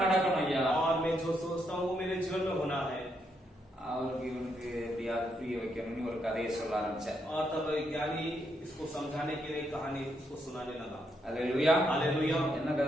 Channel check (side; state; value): both; normal; correlation 0.78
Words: நடக்கணும் ஐயா. और मैं जो सोचता हूँ वो मेरे जीवन में होना है। அவருக்கு இவனுக்கு எப்படியாவது புரிய வைக்கணும்னு ஒரு கதையை சொல்ல ஆரம்பிச்சேன். और तब ज्ञानी इसको समझाने के लिए कहानी उसको सुनाने लगा। அல்லேலூயா. हालेलुया। என்ன